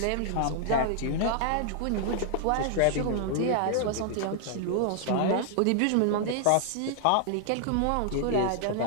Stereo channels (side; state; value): both; different; correlation -0.01